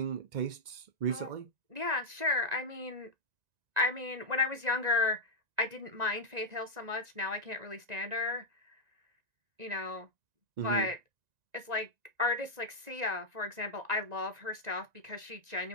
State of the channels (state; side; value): late; left; 1.9 ms